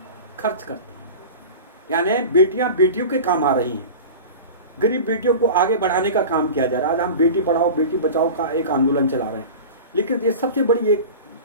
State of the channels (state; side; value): inverted; both; correlation -0.33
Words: खर्च करती हैं। यानी बेटियां बेटियों के काम आ रही हैं, गरीब बेटियों को आगे बढ़ाने का काम किया जा रहा है। आज हम बेटी पढ़ाओ बेटी बचाओ का एक आंदोलन चला रहे हैं, लेकिन ये सबसे बड़ी एक